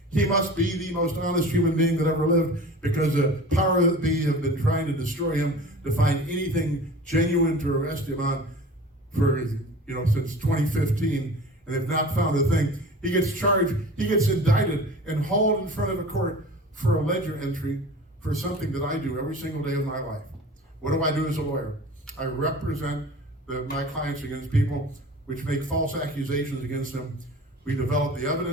He must be the most honest human being that ever lived, because the power that be have been trying to destroy him, to find anything genuine to arrest him on for, since 2015, and they've not found a thing. He gets charged, he gets indicted and hauled in front of a court for a ledger entry for something that I do every single day of my life. What do I do as a lawyer? I represent my clients against people which make false accusations against them. We develop the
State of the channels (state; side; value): normal; both; correlation 0.40